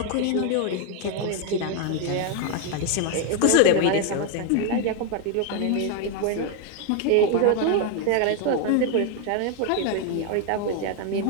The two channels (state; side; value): different; both; correlation 0.01